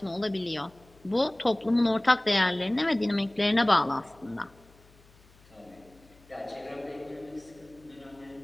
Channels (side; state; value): left; noise; hum, 28 dB below the sound